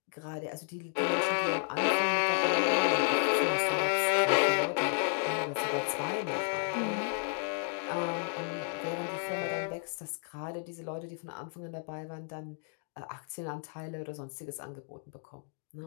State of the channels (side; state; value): right; silent; 56 dB below the other